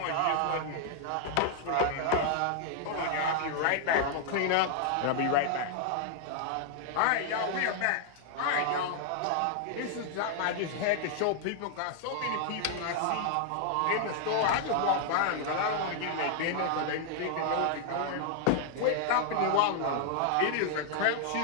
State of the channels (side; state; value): both; different; correlation 0.00